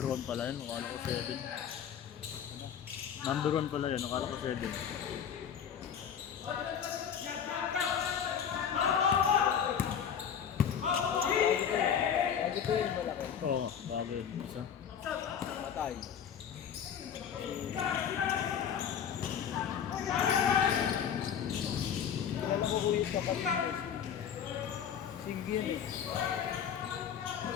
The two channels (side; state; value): right; quieter; 8.2 dB